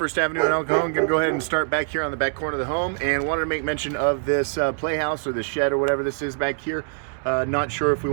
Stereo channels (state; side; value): silent; left; 63 dB below the other